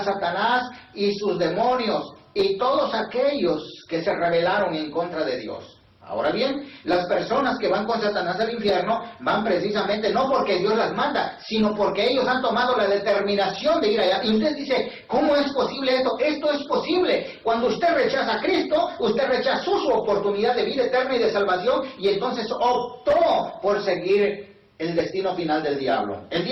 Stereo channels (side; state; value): both; identical; correlation 1.00